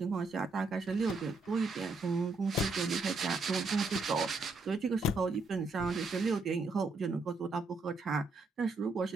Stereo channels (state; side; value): quieter; left; 3.5 dB